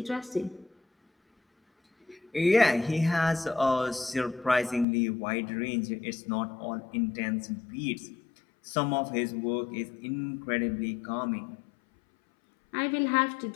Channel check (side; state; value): right; drops out; at 4.9 s